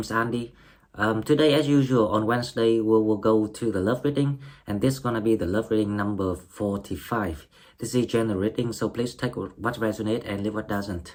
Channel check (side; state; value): both; identical; correlation 1.00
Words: is Andy. Today, as usual, on Wednesday, we will go to the love reading, and this is gonna be the love reading number 45. This is general reading, so please take what resonates and leave what